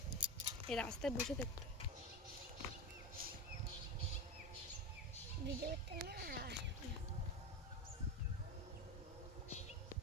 এই রাস্তায় বসে থাকতে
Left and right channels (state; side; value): normal; both; correlation 0.19